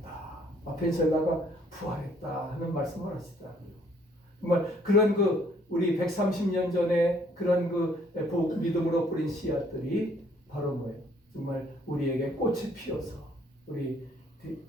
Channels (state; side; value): normal; both; correlation 0.63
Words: 아펜셀라가 부활했다 하는 말씀을 하시더라고요. 정말 그런 우리 130년 전에 그런 믿음으로 뿌린 씨앗들이 바로 뭐예요? 정말 우리에게 꽃이 피어서 우리